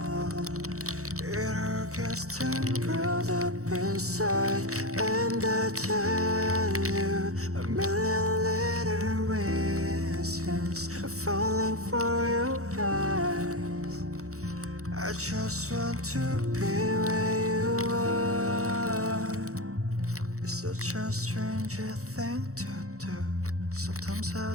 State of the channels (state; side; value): late; left; 0.65 ms